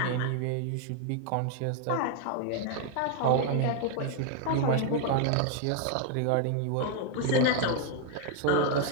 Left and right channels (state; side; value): different; both; correlation 0.00